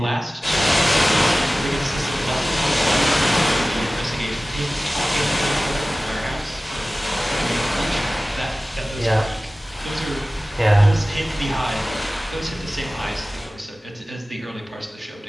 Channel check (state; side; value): normal; both; correlation 0.97